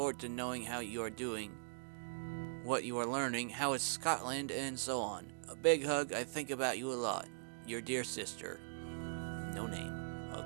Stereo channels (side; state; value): left; silent; digital silence